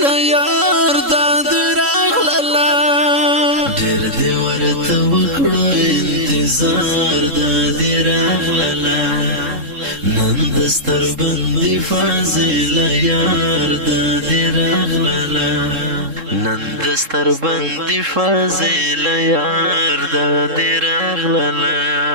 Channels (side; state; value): left; late; 3.7 ms